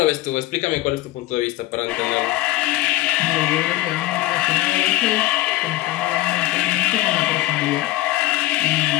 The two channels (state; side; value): quieter; right; 16.8 dB